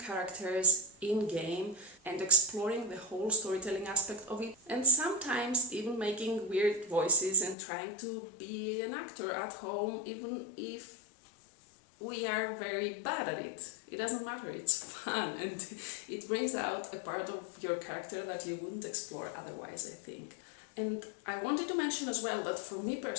characters in-game and exploring the whole storytelling aspect of it, and sometimes even making weird voices and trying to be an actor at home, even if we are very bad at it. It doesn't matter, it's fun and it brings out a part of your character that you wouldn't explore otherwise, I think. And I wanted to mention as well that for me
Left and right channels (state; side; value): drops out; right; at 7.6 s